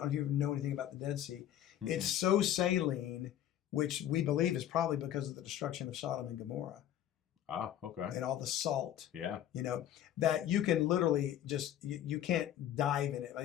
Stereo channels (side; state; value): right; quieter; 11.3 dB